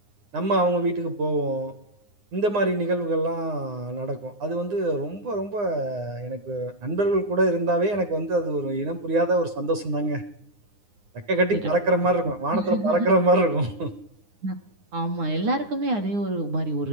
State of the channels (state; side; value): late; left; 9.7 ms